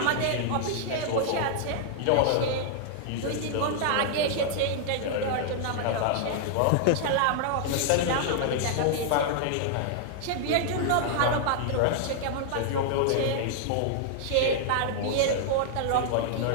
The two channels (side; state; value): both; different; correlation -0.01